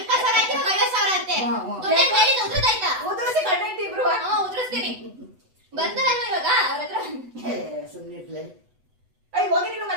ಆಯ್ತು, 50,000 ಅಂತೆ. ಉದ್ರದಾಯ್ತಾ? ಉದ್ರಸಿ ಗಂಡ ಹೆಂಡತಿ ಇಬ್ರು. ಉದ್ರಿಸ್ತೀನಿ. ಬರ್ತಾರಲ್ವ ಇವಾಗ ಅವ್ರ ಹತ್ರ? ಸುಮ್ಮನೆ ಇರ್ಲಿ. ಅಯ್ಯ ಹೋಗಿ, ನೀನು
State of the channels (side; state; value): left; late; 8.0 ms